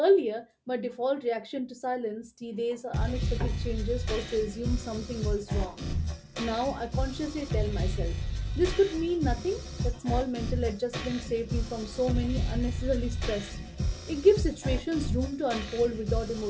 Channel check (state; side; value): identical; both; correlation 1.00